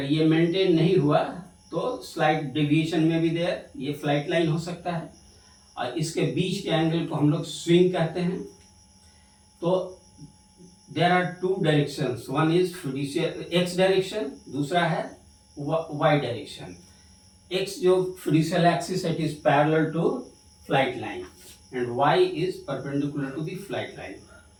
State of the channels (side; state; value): both; identical; correlation 1.00